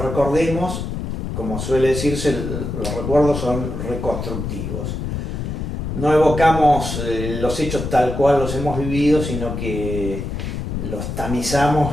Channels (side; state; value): left; noise; rumble, 4 dB below the sound